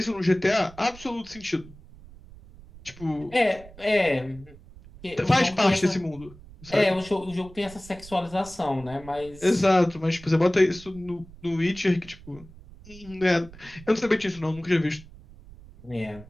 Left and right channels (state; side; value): noise; right; rumble, 20 dB below the sound